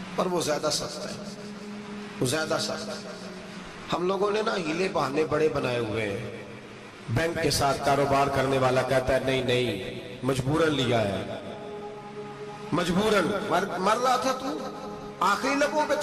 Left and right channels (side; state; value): both; identical; correlation 1.00